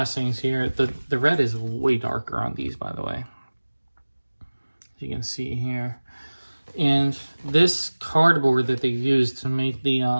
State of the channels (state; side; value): inverted; both; correlation -1.00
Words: here. The red is way darker on these, by the way. As you can see here. And this cardboard that they used to make